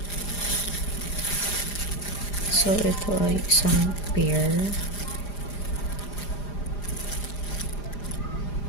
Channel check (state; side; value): late; right; 4.9 ms